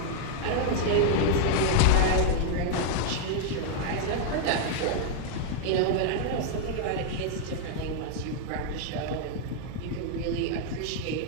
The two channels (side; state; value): both; different; correlation 0.00